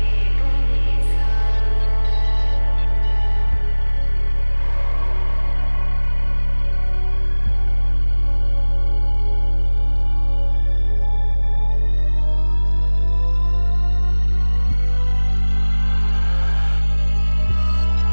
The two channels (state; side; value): inverted; both; correlation -1.00